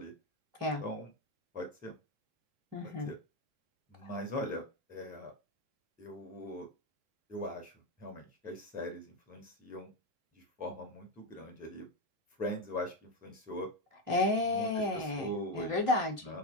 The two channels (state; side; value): late; left; 3.2 ms